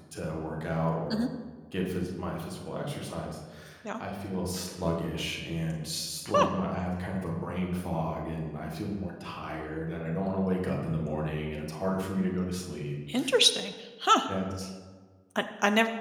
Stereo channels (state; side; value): identical; both; correlation 1.00